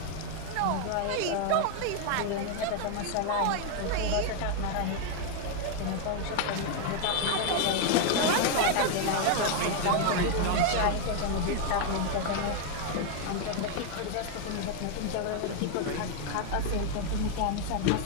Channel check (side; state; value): both; different; correlation 0.01